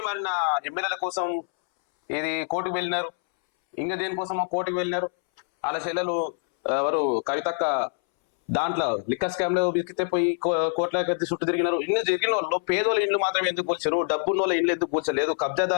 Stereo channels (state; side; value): silent; right; 61 dB below the other